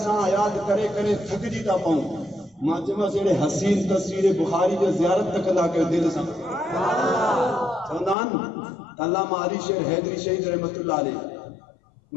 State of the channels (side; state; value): right; drops out; at 8.2 s